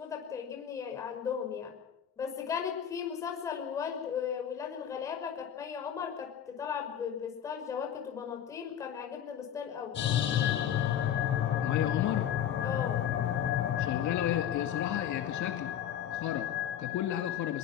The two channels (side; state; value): right; quieter; 9.7 dB